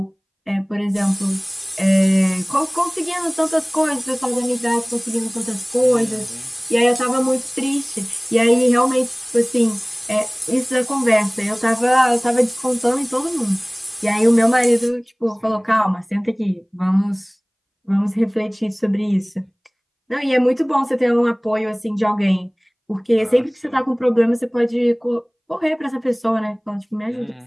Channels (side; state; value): both; identical; correlation 1.00